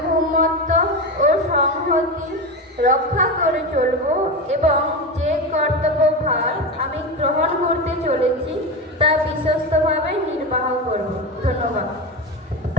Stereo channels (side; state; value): both; normal; correlation 0.21